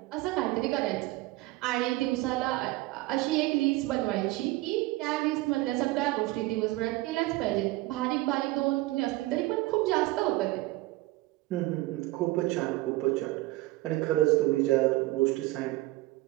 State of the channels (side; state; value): left; quieter; 19.4 dB